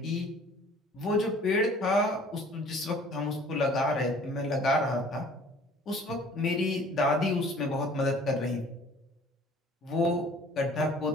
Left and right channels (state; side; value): normal; both; correlation 0.51